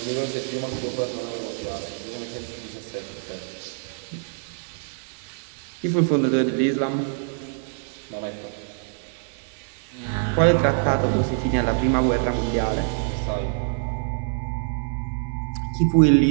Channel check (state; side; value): silent; left; digital silence